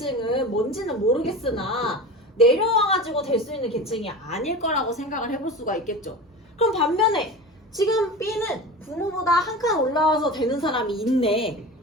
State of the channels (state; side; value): normal; both; correlation 0.31